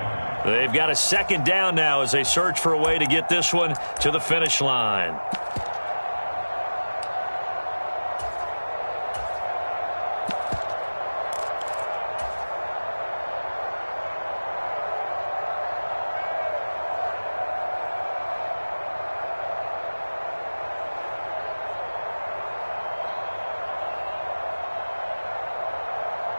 They've got a 2nd down now as they search for a way to get this one to the finish line.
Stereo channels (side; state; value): both; inverted; correlation -1.00